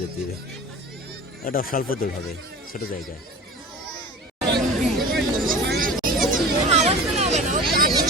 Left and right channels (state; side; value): normal; both; correlation 0.36